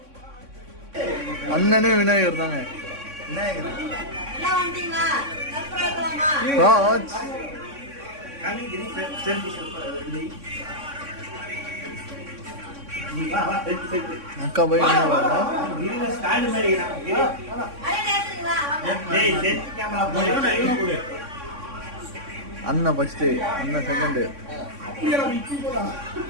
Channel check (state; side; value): late; left; 3.6 ms